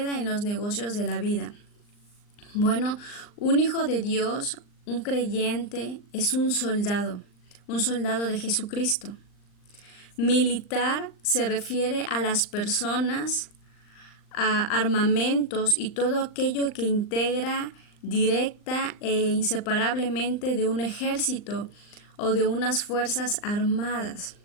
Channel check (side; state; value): right; late; 39 ms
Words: en los negocios de la vida. Bueno, un hijo de Dios, un creyente, es un soldado de Jesucristo. Militar se refiere a las personas, a armamentos y todo aquello que integra directa e inseparablemente de un ejército o de unas fuerzas armadas.